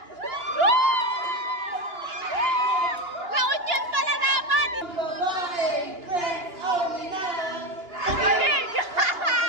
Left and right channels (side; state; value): left; late; 2.9 ms